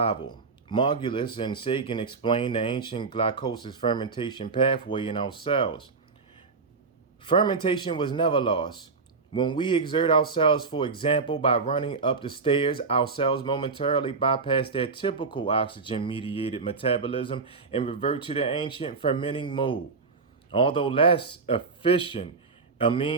Margulis and Sagan explained the ancient glycolysis fermentation pathway in our cells. Fermentation was never lost. When we exert ourselves, for example, by running up the stairs, our cells momentarily bypass their typical oxygen mediated metabolism and revert to the ancient fermenting mode. Although less efficient a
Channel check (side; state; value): left; quieter; 4.5 dB